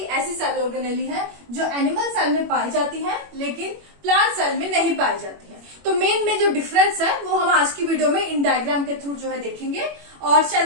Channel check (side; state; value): left; late; 21 ms